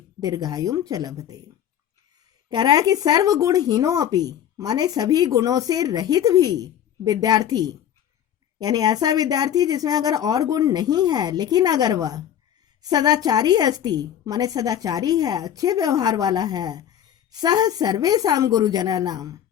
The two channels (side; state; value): right; quieter; 10.1 dB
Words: दीर्घायुं च लभते। कह रहा है कि सर्वगुणहीनो अपि माने सभी गुणों से रहित भी विद्यार्थी, यानी ऐसा विद्यार्थी जिसमें अगर और गुण नहीं है लेकिन अगर वह सदाचारी अस्ति माने सदाचारी है, अच्छे व्यवहार वाला है, सह सर्वेषां गुरुजनानां